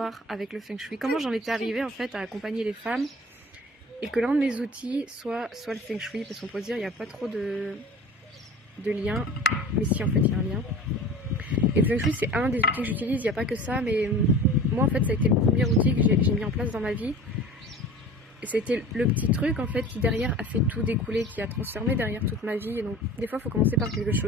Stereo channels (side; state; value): both; normal; correlation 0.40